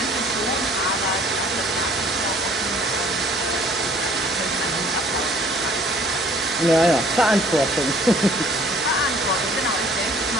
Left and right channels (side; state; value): both; normal; correlation 0.55